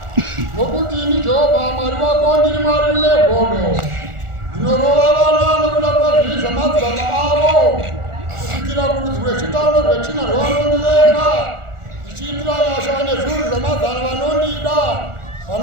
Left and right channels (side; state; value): left; late; 1.4 ms